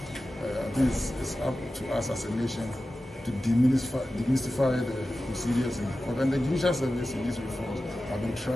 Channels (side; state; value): both; normal; correlation 0.94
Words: I think it's up to us as a nation to demystify the procedures in the court. And the judicial service in these reforms have been